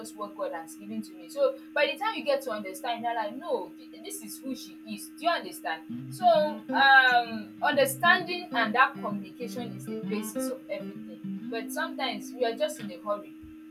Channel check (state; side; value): identical; both; correlation 1.00